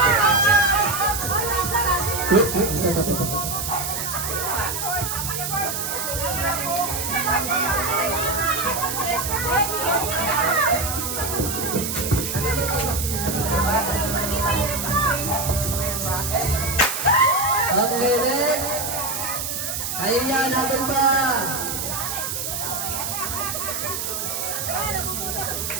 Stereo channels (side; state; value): right; noise; hiss, 3 dB below the sound